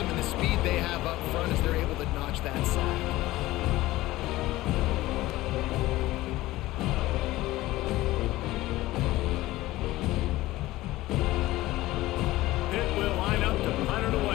and the speed they have up front as they're able to notch that sack. Will line up to punt it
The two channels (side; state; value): right; quieter; 17.5 dB